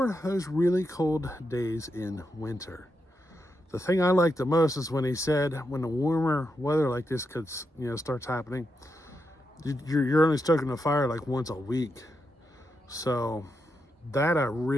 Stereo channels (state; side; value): normal; both; correlation 0.84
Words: those really cold days in winter. The thing I like the most is when he said when the warmer weather like this starts happening, you're only stoking the fire like once a week. So that I